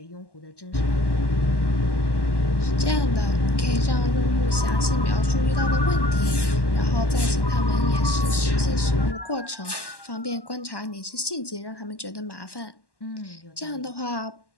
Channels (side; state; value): right; late; 1.1 ms